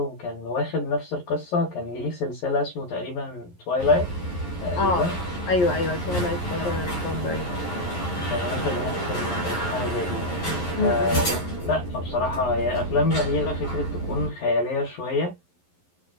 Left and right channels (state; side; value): late; right; 11 ms